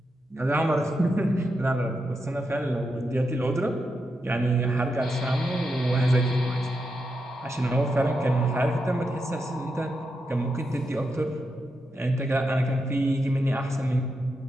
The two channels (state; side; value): normal; both; correlation 0.85